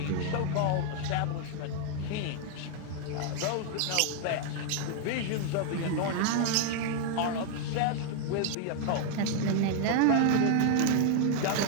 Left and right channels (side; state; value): both; different; correlation 0.00